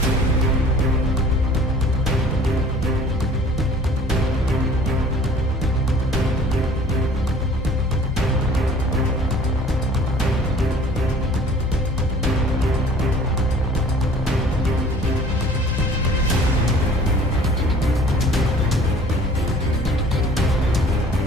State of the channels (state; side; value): normal; both; correlation 0.50